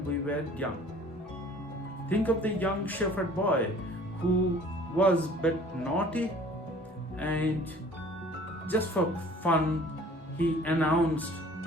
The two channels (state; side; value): normal; both; correlation 0.50